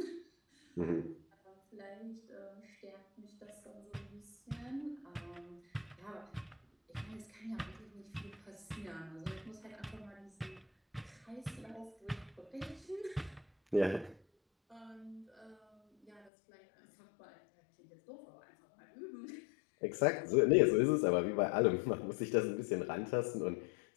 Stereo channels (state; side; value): drops out; right; at 16.3 s